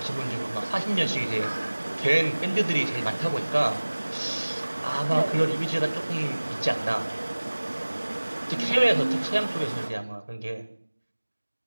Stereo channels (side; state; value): both; inverted; correlation -1.00